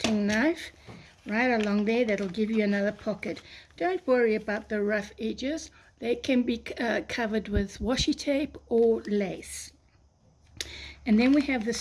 knife right along there. That'll give you another pocket. Don't worry about the rough edges. They can be covered with washi tape or lace. And then we have the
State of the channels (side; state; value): both; identical; correlation 1.00